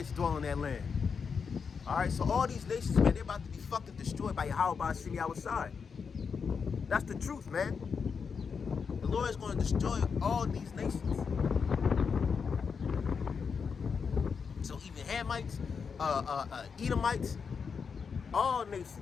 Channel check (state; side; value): quieter; right; 5.9 dB